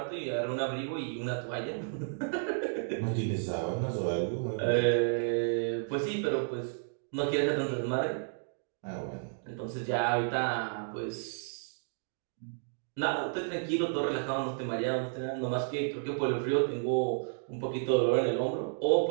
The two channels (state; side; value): silent; left; digital silence